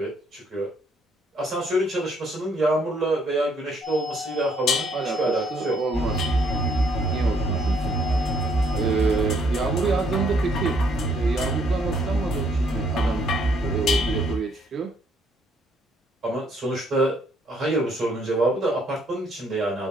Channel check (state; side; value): normal; both; correlation 0.68